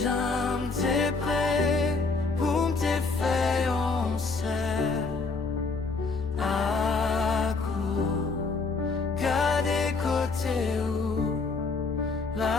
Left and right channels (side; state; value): right; quieter; 4.1 dB